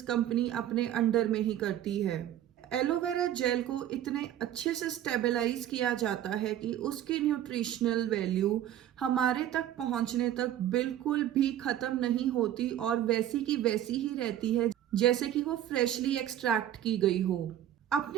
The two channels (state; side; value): quieter; left; 11.7 dB